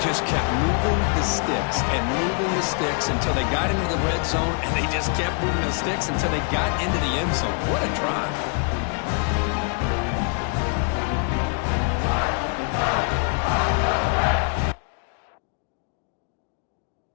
just kept moving the sticks and moving the sticks until they got into the red zone, and they just kept moving the sticks until they got into the end zone. What a drive.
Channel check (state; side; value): quieter; right; 39.6 dB